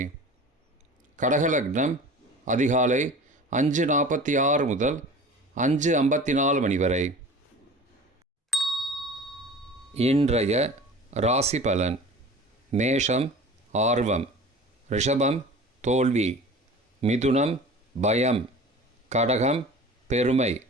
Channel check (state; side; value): normal; both; correlation 0.40